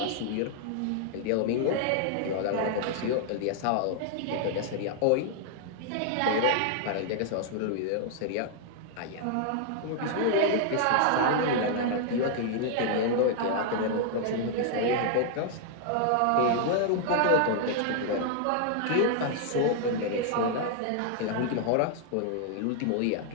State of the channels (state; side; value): different; both; correlation 0.00